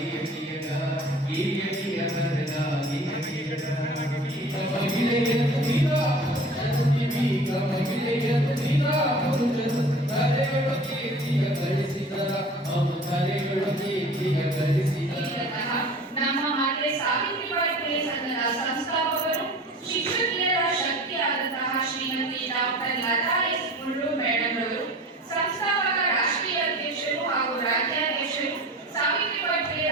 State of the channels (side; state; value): both; normal; correlation 0.41